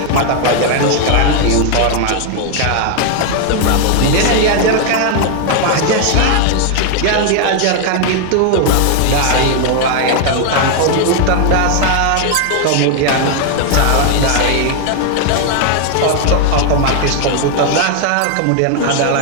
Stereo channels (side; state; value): both; different; correlation 0.00